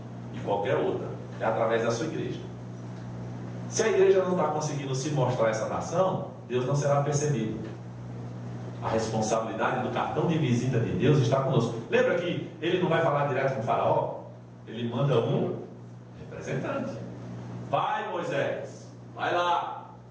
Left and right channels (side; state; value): both; identical; correlation 1.00